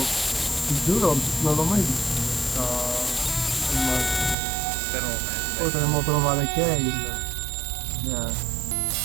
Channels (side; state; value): left; drops out; at 4.4 s